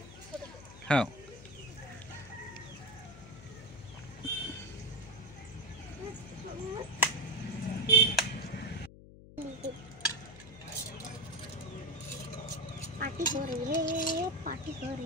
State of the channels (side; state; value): left; noise; hum, 17 dB below the sound